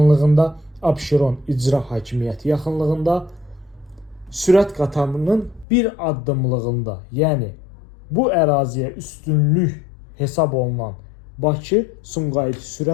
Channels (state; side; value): drops out; right; at 5.7 s